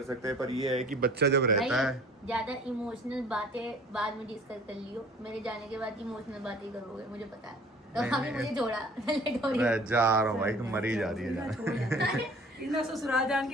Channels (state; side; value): normal; both; correlation 0.50